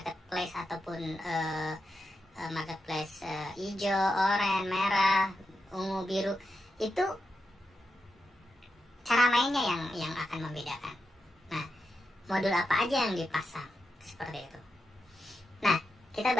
ataupun marketplace hijau, oranye, merah, ungu, biru, itu cara mainnya yang akan membedakan. Nah, modul apa aja yang dipasang seperti itu. Nah, kita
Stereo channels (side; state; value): both; normal; correlation 0.87